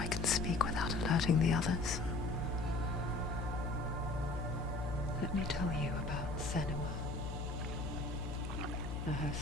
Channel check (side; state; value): left; noise; hum, 4 dB below the sound